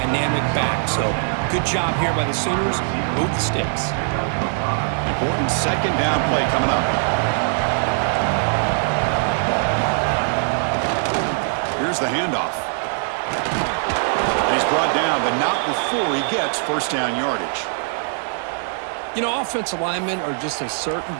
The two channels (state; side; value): silent; left; digital silence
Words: back. So good job here by the Sooners. Move the sticks. Important second down play coming up. Here's the handoff. And he's brought down, but not before he gets first down yardage. You know, offensive linemen are just a certain